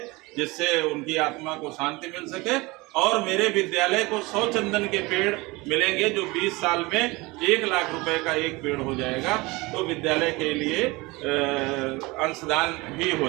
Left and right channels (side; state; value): left; quieter; 23.2 dB